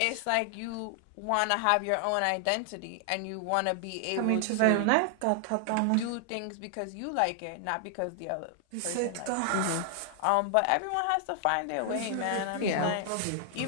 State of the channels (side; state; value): both; different; correlation 0.00